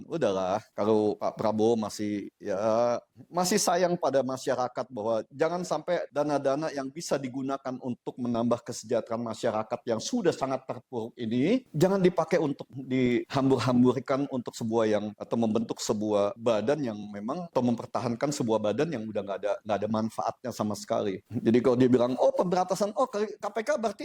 udahlah kalau Pak Prabowo masih sayang pada masyarakat bahwa jangan sampai dana-dana yang bisa digunakan untuk menambah kesejahteraan masyarakat yang sudah sangat terpuruk ini jangan dipakai untuk dihambur-hamburkan untuk atau membentuk sebuah badan yang memang atau mempertahankan sebuah badan yang udah nggak ada manfaatnya sama sekali. Jadi kalau dia bilang pemberantasan KPK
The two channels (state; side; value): identical; both; correlation 1.00